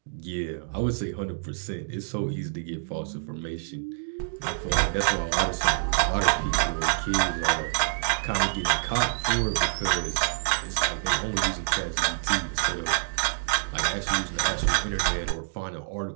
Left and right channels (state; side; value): silent; left; digital silence